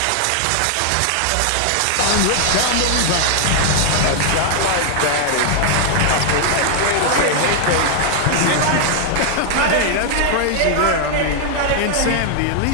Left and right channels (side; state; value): both; different; correlation 0.00